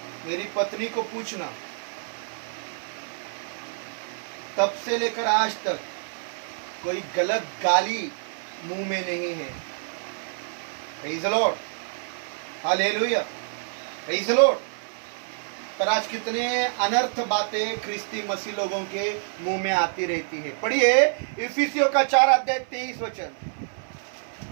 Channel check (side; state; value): left; silent; 55 dB below the other